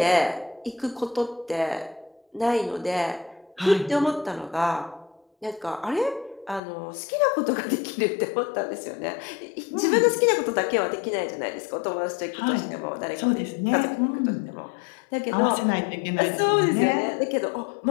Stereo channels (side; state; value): right; drops out; at 6.6 s